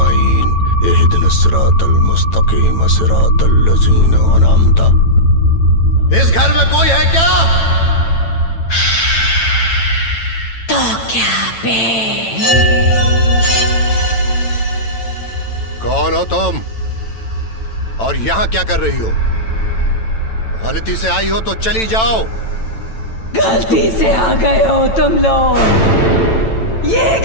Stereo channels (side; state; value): right; late; 9.0 ms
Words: इहदिनस सिरातल मुस्तकीम, सिरातल लज़ीना अनअमता। इस घर में कोई है क्या? तो क्या बे? कौन हो तुम और यहाँ क्या कर रही हो? गलती से आई हो तो चली जाओ। गलती से आ गए हो तुम लोग। ये